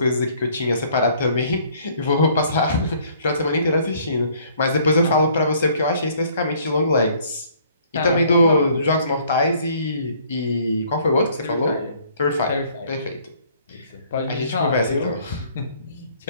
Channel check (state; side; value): inverted; both; correlation -0.60